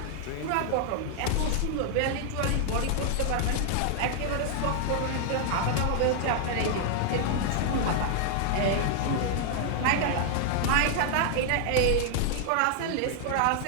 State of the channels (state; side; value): different; both; correlation 0.00